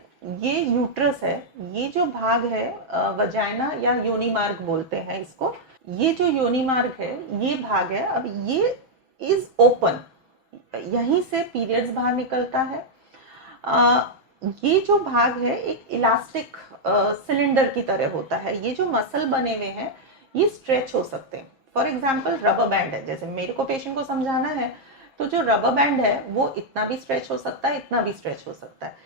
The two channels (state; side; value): late; left; 6.1 ms